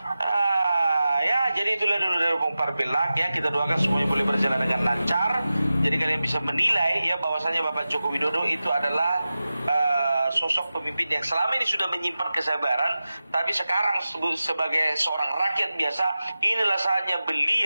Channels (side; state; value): both; inverted; correlation -0.94